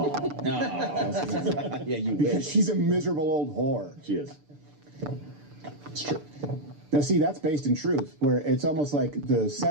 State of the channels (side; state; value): left; late; 6.8 ms